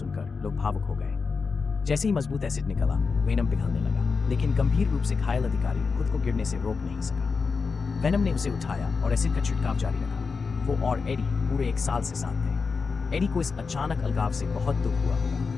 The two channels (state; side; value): quieter; right; 4.9 dB